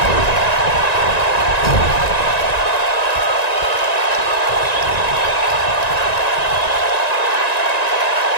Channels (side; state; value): right; late; 1.9 ms